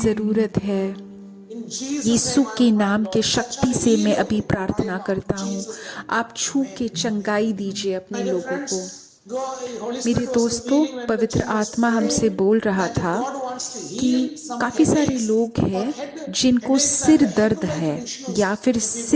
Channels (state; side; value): identical; both; correlation 1.00